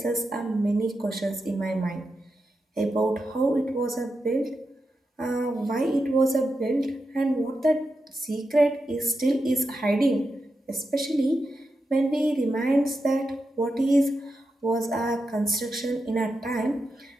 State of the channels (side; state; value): both; normal; correlation 0.88